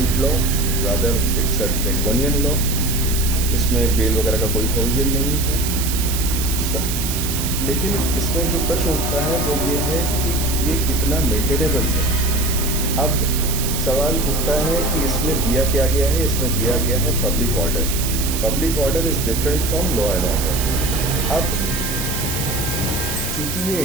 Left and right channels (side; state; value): right; noise; hiss, 4 dB below the sound